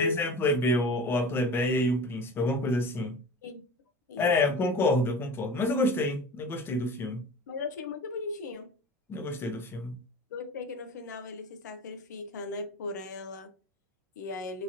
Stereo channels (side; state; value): both; normal; correlation 0.36